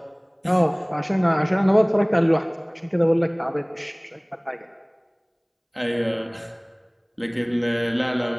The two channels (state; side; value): identical; both; correlation 1.00